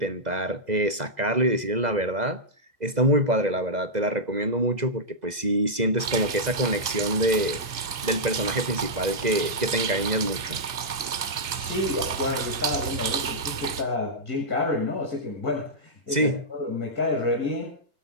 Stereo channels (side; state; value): left; late; 2.3 ms